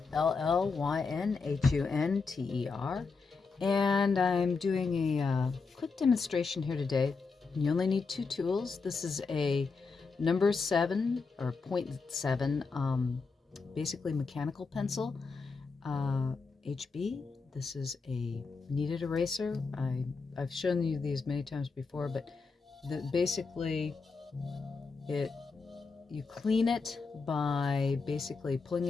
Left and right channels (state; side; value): quieter; right; 4.6 dB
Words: L-L-Y-N-H-U-N-T-E-R, and I'm doing a quick demonstration here today. You only need two tools. This is a number 7 or 0.7, basically mechanical pencil, HB. This is a kneaded eraser. I've shown you these many times before, but basically you clean it by basically pulling